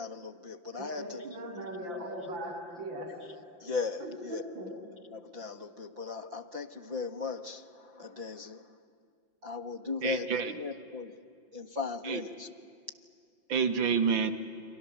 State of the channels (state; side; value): late; left; 5.8 ms